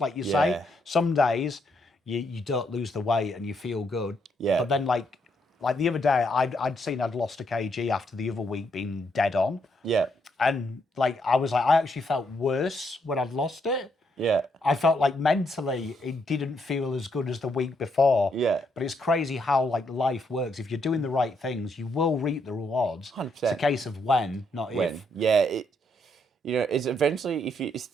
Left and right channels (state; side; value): normal; both; correlation 0.75